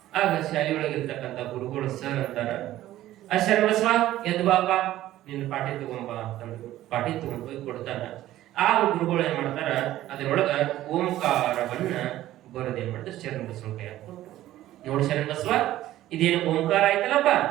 ಆಗ ಶಾಲೆಯೊಳಗಿರ್ತಕ್ಕಂಥ ಗುರುಗಳು ಸರ್ ಅಂತಾರ, ಆ ಶರಣ ಬಸವ ಎದ್ದು ಬಾಪ, ನಿನ್ನ ಪಾಠಿ ತಗೊಂಬ ಅಂತಂದ್ರು. ಪಾಠಿ ತಗೊಂಡ್ ಹೋಗಿ ಕೊಡ್ತಾನ. ಆ ಗುರುಗಳು ಏನ್ ಮಾಡ್ತಾರ, ಅದರೊಳಗ ಓಂಕಾರವನ್ನ ಬರೋದೇನ್ ಮಾಡ್ತಾರೆ, ಶರಣ ಬಸವನ ಕೈ ಹಾಕ್ಕೊಟ್ರು. ನೋಡಿ ಶರಣ ಬಸವ, ಇದೇನು ಓಂಕಾರ ಆಯ್ತಲ್ಲಪ್ಪ,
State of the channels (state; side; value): quieter; left; 14.3 dB